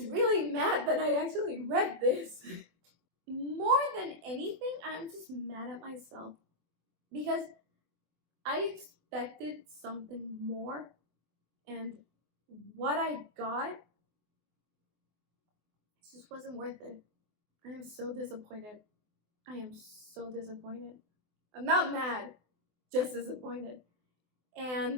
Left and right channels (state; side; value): late; left; 24 ms